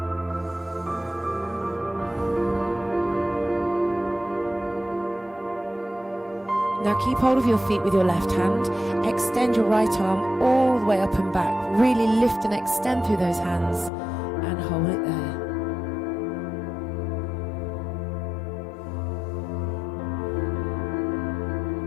Now keep hold of your feet with your left hand. Extend your right arm all the way up and back. Really lift and extend through those hands, and hold it there.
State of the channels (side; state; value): right; drops out; at 13.9 s